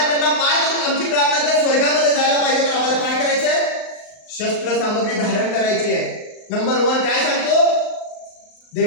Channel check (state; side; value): late; right; 39 ms